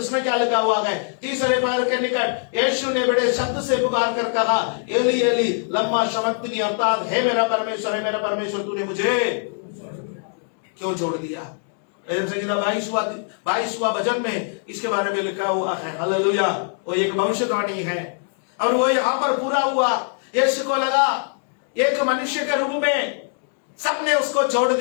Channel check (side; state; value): right; silent; 58 dB below the other